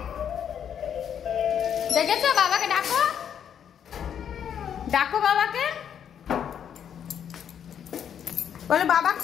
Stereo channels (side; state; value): right; quieter; 8.7 dB